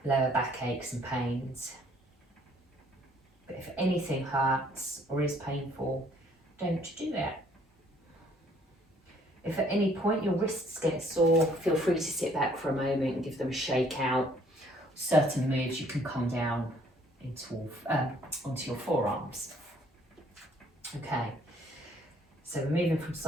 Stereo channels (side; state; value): both; normal; correlation 0.62